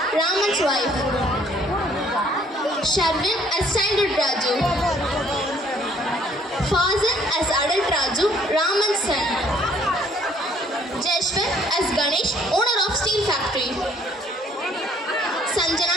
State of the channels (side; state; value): both; normal; correlation 0.61